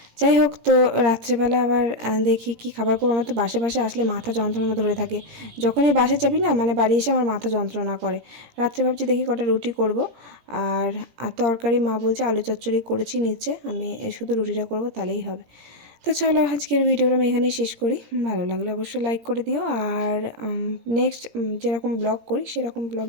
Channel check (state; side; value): late; left; 17 ms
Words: যাই হোক, তো রাত্রেবেলা আবার দেখি কি খাবার করবো। আমার তো বাসে বাসে আসলে মাথা যন্ত্রণা ধরে থাকে, যখনই বাসে যাবি না মানে বাড়ি এসে আমার মাথা যন্ত্রণা করে। রাত্রে ভাবছি দেখি কটা রুটি করব, আর তরকারি মা বলছে আলু চচ্চড়ি করেছি নিচে, আমি শুধু রুটিটা করব তাহলেই হবে। তো চলো আজকের ভিডিওটা আমি এখানেই শেষ করি। ভালো লাগলে অবশ্যই লাইক করে দিও, আর নেক্সট যেরকম ব্লগ করি সেরকম